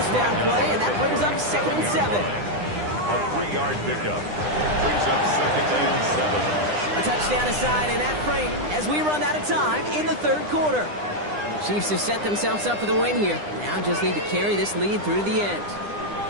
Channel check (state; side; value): late; left; 9.9 ms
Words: down play, and that brings up 2nd and 7. A 3-yard pickup brings up 2nd and 7. A touchdown aside in that frame as we run out of time in the 3rd quarter. Chiefs have set themselves up for the win here. Now just need to carry this lead through to the end.